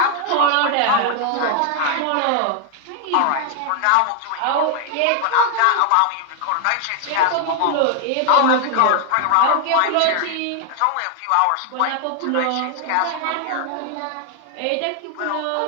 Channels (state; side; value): different; both; correlation 0.00